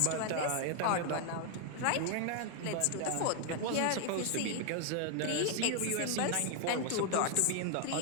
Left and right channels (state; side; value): different; both; correlation 0.00